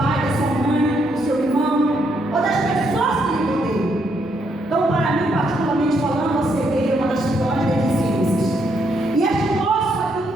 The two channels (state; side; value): normal; both; correlation 0.75